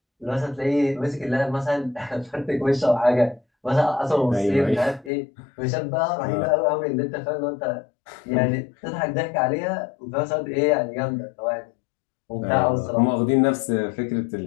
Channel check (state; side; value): drops out; right; at 5.1 s